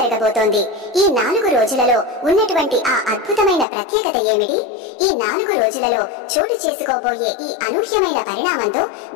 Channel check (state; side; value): drops out; right; at 3.7 s